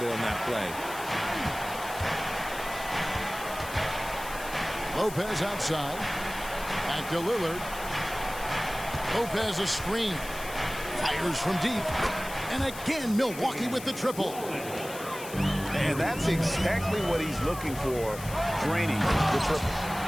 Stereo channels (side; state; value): left; noise; hiss, 13 dB below the sound